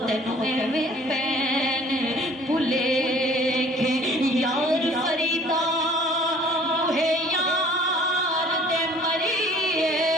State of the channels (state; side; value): normal; both; correlation 0.52